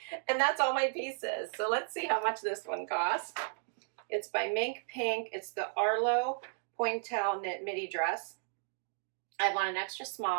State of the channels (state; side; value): silent; left; digital silence